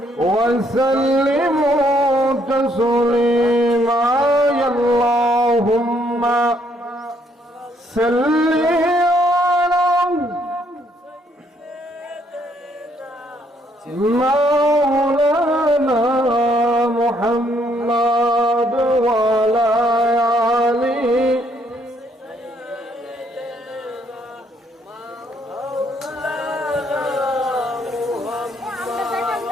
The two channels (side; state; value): both; normal; correlation 0.69